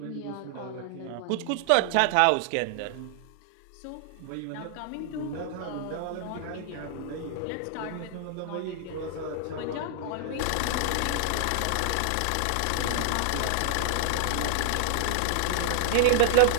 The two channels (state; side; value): different; both; correlation 0.00